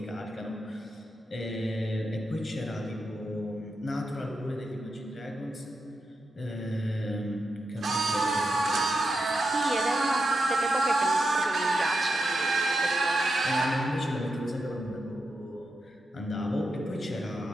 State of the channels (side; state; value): both; normal; correlation 0.86